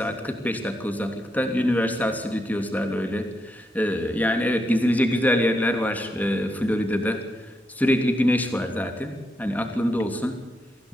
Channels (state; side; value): normal; both; correlation 0.81